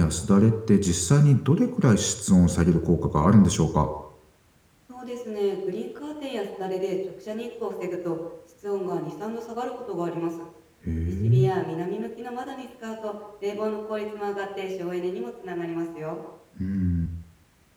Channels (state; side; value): identical; both; correlation 1.00